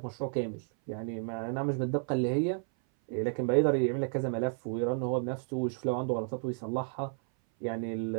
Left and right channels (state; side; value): silent; left; 56 dB below the other